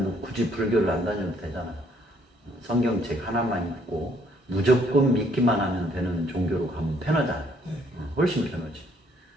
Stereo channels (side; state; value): both; normal; correlation 0.65